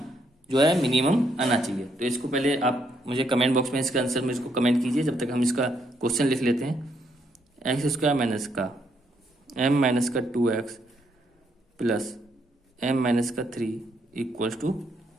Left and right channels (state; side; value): normal; both; correlation 0.74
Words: जो है मिनिमम आना चाहिए। तो इसको पहले आप मुझे कमेंट बॉक्स में इसका आंसर में इसको कमेंट कीजिए, जब तक हम इसका क्वेश्चन लिख लेते हैं। एक्स स्क्वायर माइनस का m माइनस का 2x प्लस m माइनस का 3 इक्वल्स टू